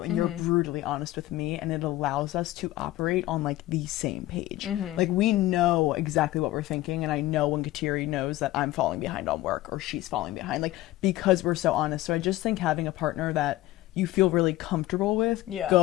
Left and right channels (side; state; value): right; quieter; 16.4 dB